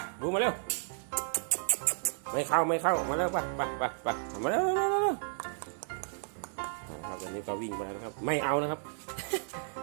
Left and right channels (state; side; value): silent; left; digital silence